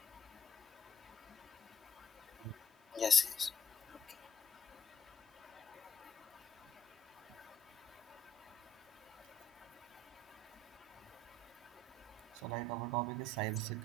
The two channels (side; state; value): both; normal; correlation 0.66